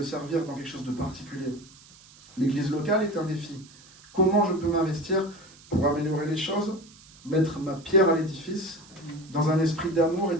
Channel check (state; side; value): noise; right; hiss, 23 dB below the sound